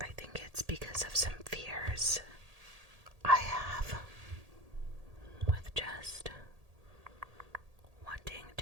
think it's because of some fears I have with just wanting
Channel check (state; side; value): late; left; 1.8 ms